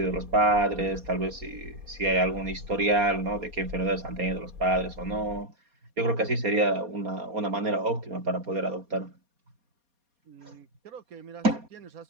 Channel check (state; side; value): late; left; 4.2 ms